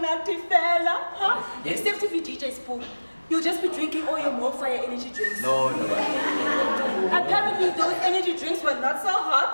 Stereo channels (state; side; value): inverted; both; correlation -1.00